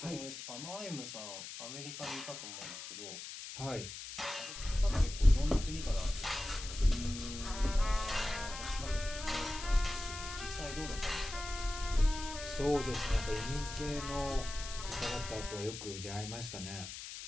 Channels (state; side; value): noise; left; hiss, 9 dB below the sound